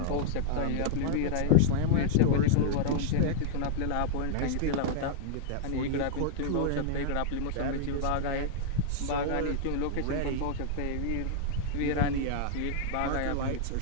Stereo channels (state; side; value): different; both; correlation -0.01